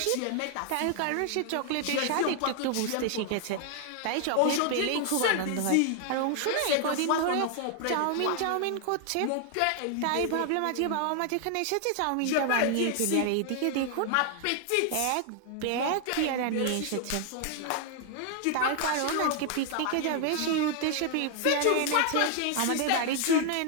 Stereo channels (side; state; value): both; different; correlation 0.00